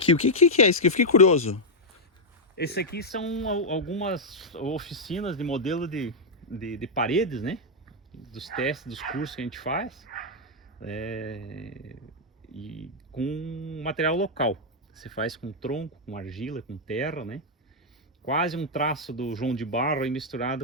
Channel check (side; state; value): both; normal; correlation -0.04